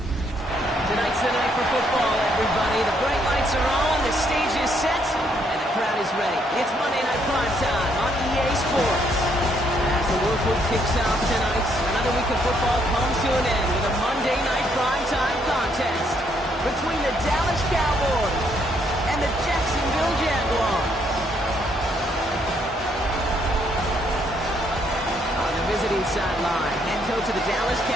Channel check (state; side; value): normal; both; correlation 0.71